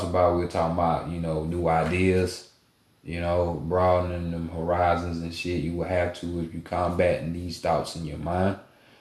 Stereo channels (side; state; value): both; identical; correlation 1.00